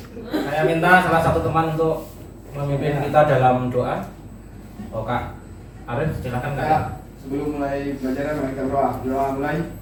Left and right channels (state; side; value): identical; both; correlation 1.00